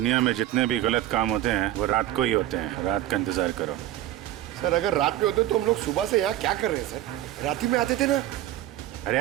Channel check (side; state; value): left; quieter; 13.6 dB